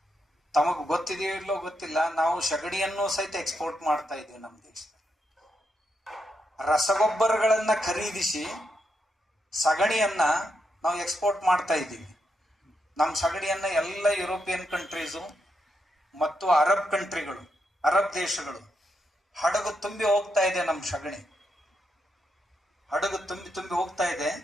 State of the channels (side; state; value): both; normal; correlation 0.82